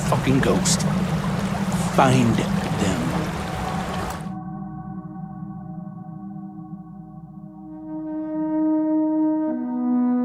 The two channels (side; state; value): both; identical; correlation 1.00